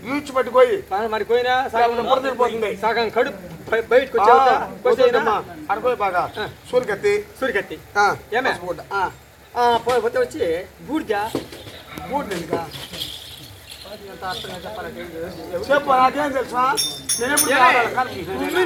ఈడ్చి పట్టుకోయి మరి పోయినా సగం పొరదిరిపోతుంది. సగం కడుపు బయటకు వచ్చేదమ్మా. అడుకోయి బాగా సూరికత్తి సూరికత్తి ఆ, ఏమే బొడ్డు. పోతే వచ్చి బూడిద బొడ్డు ఇంకా చెప్పాలంటే చెప్పు నాకేం తెలుసా నేను ఎప్పుడు కావాలి? కనిపించలేదు. ఉమ్మి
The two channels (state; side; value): identical; both; correlation 1.00